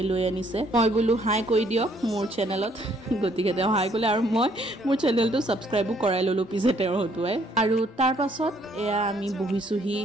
লৈ আনিছে। মই বোলো হাই কৈ দিয়ক মোৰ চেনেলত, গতিকে তেওঁ হাই ক'লে আৰু মই মোৰ চেনেলটো ছাবস্ক্ৰাইবো কৰাই ল'লোঁ পিছে তেওঁৰ হতুৱাই। আৰু তাৰ পাছত এয়া আমি বহিছোঁহি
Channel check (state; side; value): normal; both; correlation 0.66